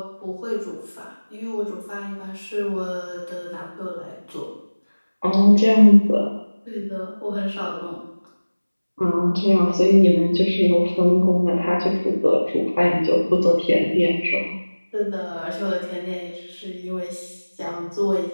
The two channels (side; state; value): both; inverted; correlation -1.00